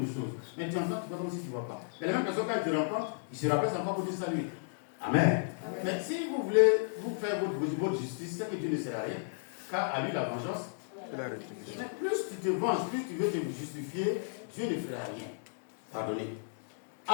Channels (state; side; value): silent; right; digital silence